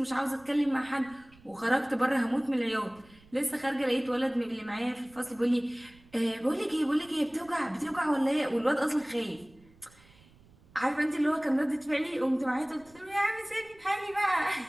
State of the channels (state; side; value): noise; right; rumble, 27 dB below the sound